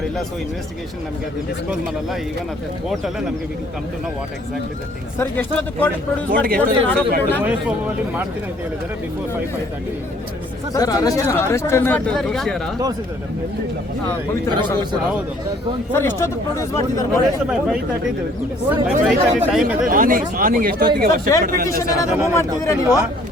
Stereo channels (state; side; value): normal; both; correlation 0.59